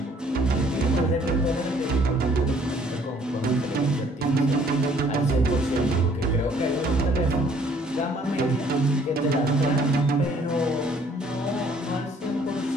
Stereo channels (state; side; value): normal; both; correlation 0.60